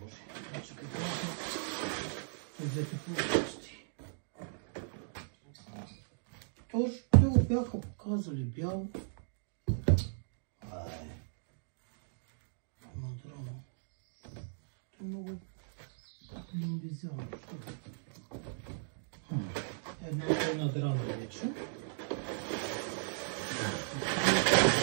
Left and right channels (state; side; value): silent; left; digital silence